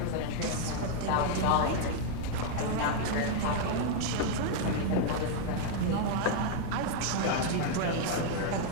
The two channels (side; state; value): both; different; correlation 0.00